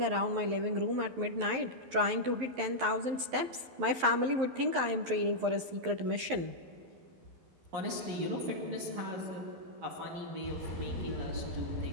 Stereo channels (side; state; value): left; late; 11 ms